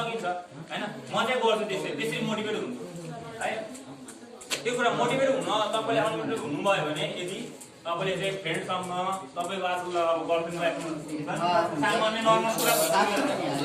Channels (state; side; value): identical; both; correlation 1.00